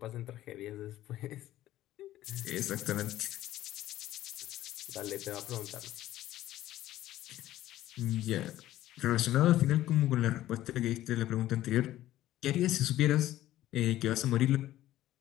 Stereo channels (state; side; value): quieter; right; 14.3 dB